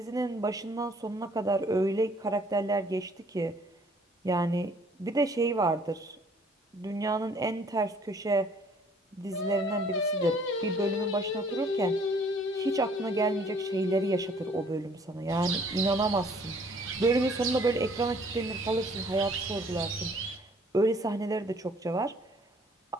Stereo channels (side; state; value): both; normal; correlation 0.59